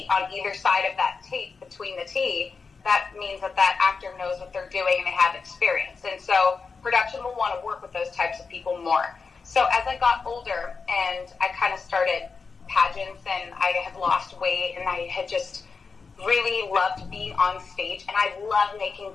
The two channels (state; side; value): quieter; right; 4.9 dB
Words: on either side of that tape between the T, that means that that actor knows what they're doing and they have experience. And so production will want to work with those types of people more. So as I got older and I kind of started pageants and I had lost weight and I had just really loved being on stage, and I love making